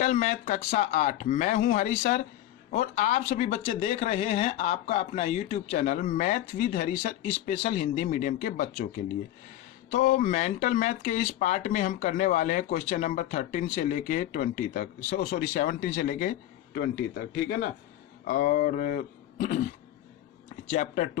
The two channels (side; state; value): right; quieter; 13.2 dB